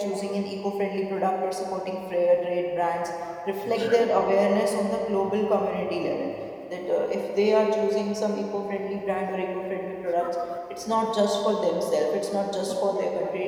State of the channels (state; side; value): identical; both; correlation 1.00